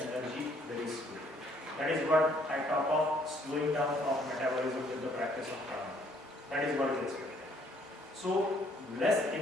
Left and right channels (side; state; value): both; normal; correlation 0.64